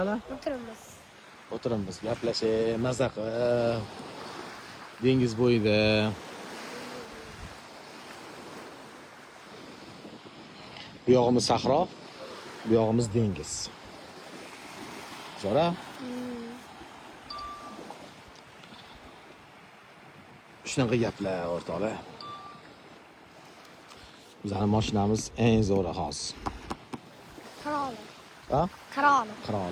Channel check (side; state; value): both; identical; correlation 1.00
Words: o'tiramiz, gaplashib, mazza qilib, dengiz bo'yida. Bu yog'imiz sahro, bu yog'imiz dengiz. Zo'ra? Shunaqa gaplar o'rtoqlar. Bizning mashinamiz eng zo'ri hozir. Qiroli. Ha? Qiroli.